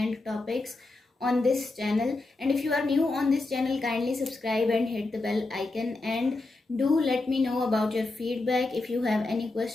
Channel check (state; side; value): quieter; right; 3.2 dB